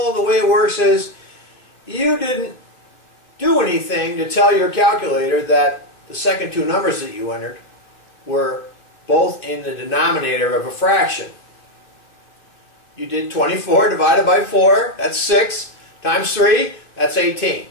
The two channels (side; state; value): right; late; 2.6 ms